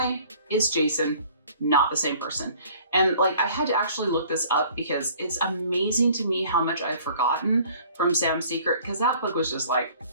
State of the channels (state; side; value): inverted; both; correlation -0.53